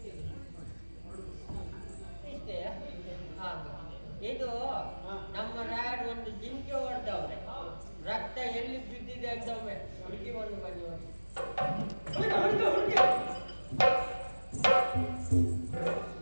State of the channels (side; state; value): both; inverted; correlation -1.00